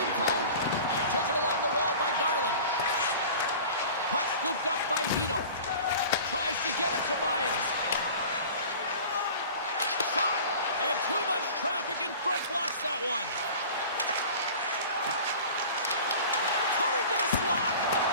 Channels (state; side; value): inverted; both; correlation -0.40